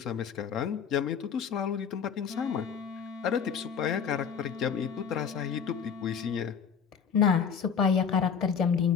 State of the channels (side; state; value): right; quieter; 6.8 dB